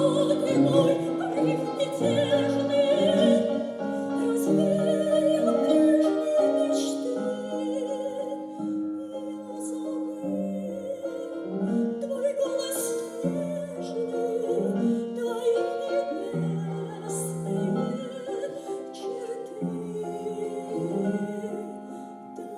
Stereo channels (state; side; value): identical; both; correlation 1.00